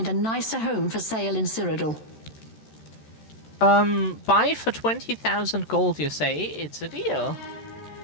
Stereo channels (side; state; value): right; late; 13 ms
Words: a nicer home for sale in Cyrodiil. Buy for 20,000 gold, you say? It's a deal.